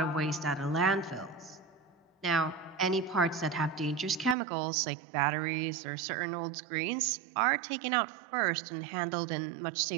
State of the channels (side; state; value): left; drops out; at 4.4 s